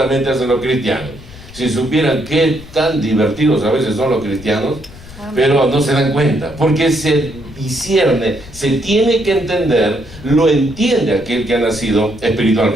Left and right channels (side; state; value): left; noise; rumble, 18 dB below the sound